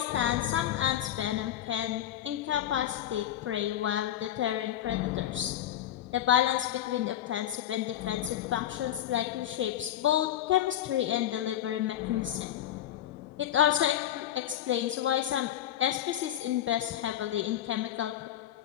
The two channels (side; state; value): right; quieter; 11.6 dB